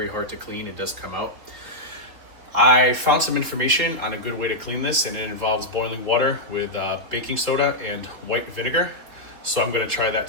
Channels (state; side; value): late; left; 3.8 ms